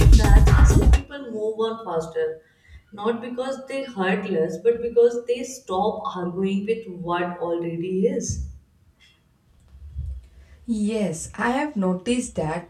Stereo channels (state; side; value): identical; both; correlation 1.00